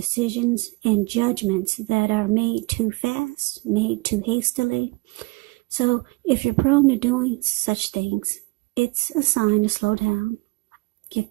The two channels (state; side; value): quieter; left; 26.0 dB